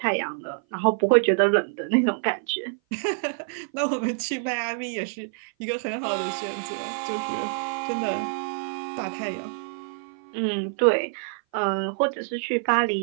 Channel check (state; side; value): silent; left; 57 dB below the other